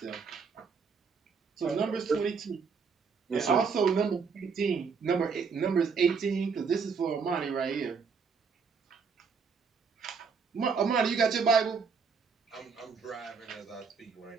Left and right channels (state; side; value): quieter; left; 5.5 dB